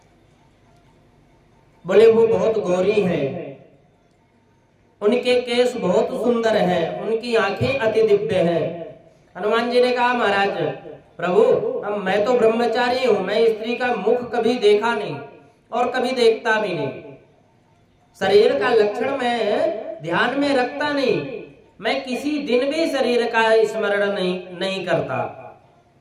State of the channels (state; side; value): identical; both; correlation 1.00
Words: बोले वो बहुत गौरी हैं, उनके केस बहुत सुंदर हैं, उनकी आंखें अति दिव्य हैं। हनुमान जी ने कहा, महाराज प्रभु, अब मैं तो ब्रह्मचारी हूं, मैं स्त्री का मुख कभी देखा नहीं और कभी देखता भी नहीं। शरीर का लक्षण मैं ध्यान में रखता नहीं, मैं किसी दिन भी शरीर का स्मरण नहीं करता।